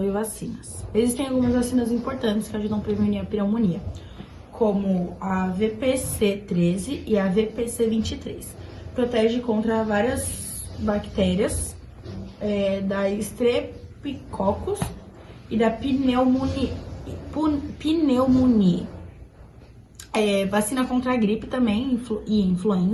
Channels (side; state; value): both; identical; correlation 1.00